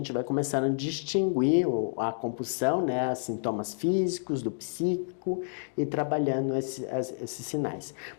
vai começando a distinguir a compulsão, né, os sintomas físicos, do psíquico, e trabalhando esses sinais.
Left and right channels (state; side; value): silent; right; digital silence